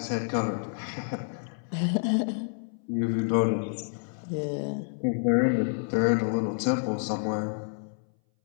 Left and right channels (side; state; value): right; silent; 59 dB below the other